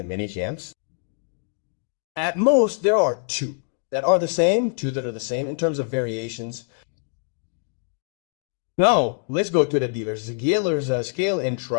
mini champs. At most, there are two that are the same, two that are the same in terms of variations. Now, let's go to the dealer's scale and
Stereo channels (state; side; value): silent; right; 62 dB below the other